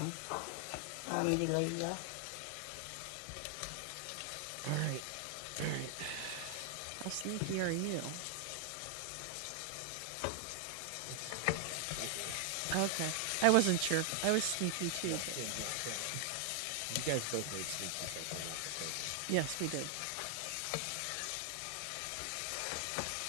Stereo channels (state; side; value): different; both; correlation 0.00